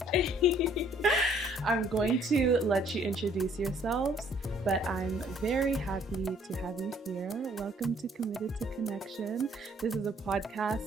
I'm going to let you introduce yourselves, but I'm very happy to have you here. Welcome to Committed to Connection. This is a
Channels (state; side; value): normal; both; correlation 0.61